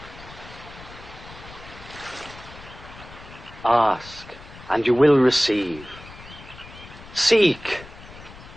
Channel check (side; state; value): left; noise; rumble, 17 dB below the sound